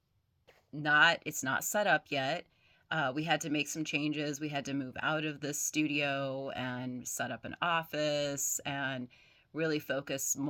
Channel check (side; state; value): both; identical; correlation 1.00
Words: not it's not set up yet. We had to make some changes. We had to move out of the studio and set up an office and really focus